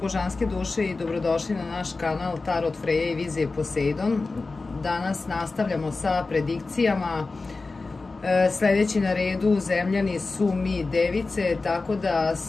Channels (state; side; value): quieter; right; 3.7 dB